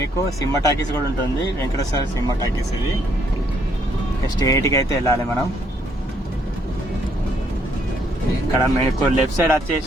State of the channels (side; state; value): both; normal; correlation 0.70